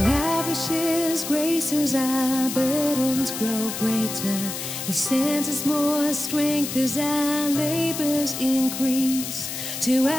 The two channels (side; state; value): left; noise; hiss, 6 dB below the sound